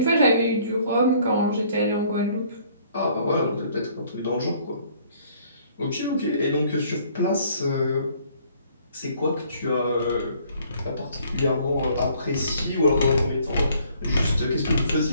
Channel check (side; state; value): both; inverted; correlation -0.60